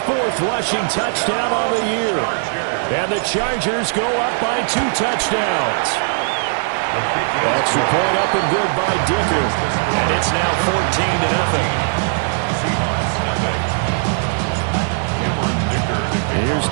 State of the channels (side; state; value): left; silent; 57 dB below the other